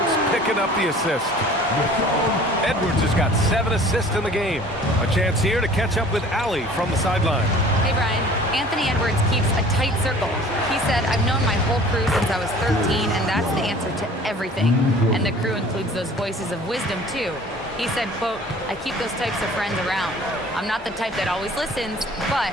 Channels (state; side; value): normal; both; correlation 0.48